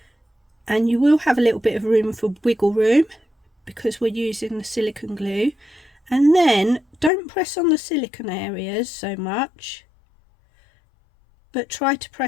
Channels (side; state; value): right; drops out; at 7.1 s